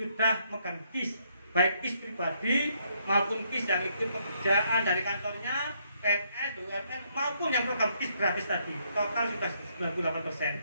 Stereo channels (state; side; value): inverted; both; correlation -0.72